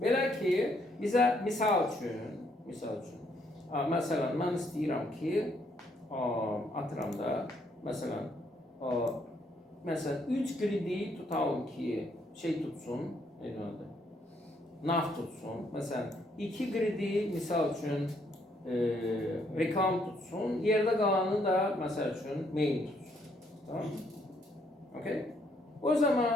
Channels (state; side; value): normal; both; correlation 0.71